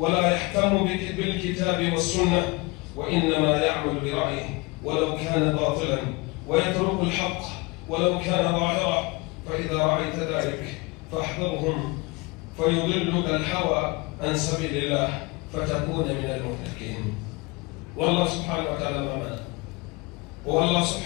يهتم بالكتاب والسنة، وإنما يعمل برأيه ولو كان باطلا، ويترك الحق ولو كان ظاهرا. فإذا رأيت ذلك فاحذرهم، فيضلك الهوى عن سبيل الله فتكون من المهلكين. والله سبحانه وتعالى معنا، والله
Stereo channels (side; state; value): right; quieter; 25.4 dB